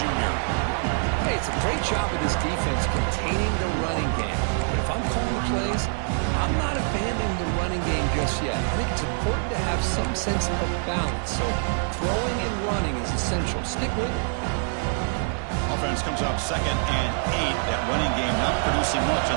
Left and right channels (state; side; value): silent; left; 57 dB below the other